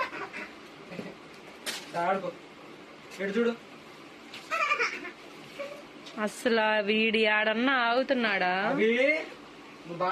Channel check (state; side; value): identical; both; correlation 1.00